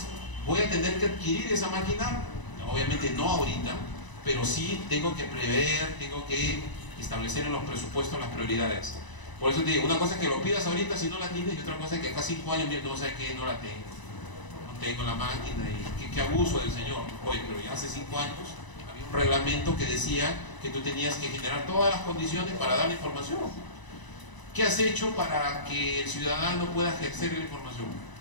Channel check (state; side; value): late; right; 1.0 ms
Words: voy a tener que adquirir esa máquina, obviamente no ahorita, pero sí tengo que prever, tengo que establecer en los presupuestos las prioridades. Por eso te digo, una cosa es que lo pidas ahorita si no la tienes, y otra cosa es que acá 5 años no sabes que no la tengo. No tengo la máquina y qué abuso del señor. Oye, pero ya hace 5 años había un reglamento que decía que tú tenías que generar todas las condiciones para dar la información. ¿Qué has hecho para que el ciudadano pueda ejercer la información?